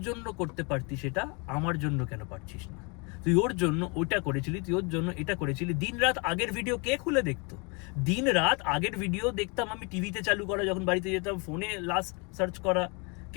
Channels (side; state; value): right; quieter; 31.9 dB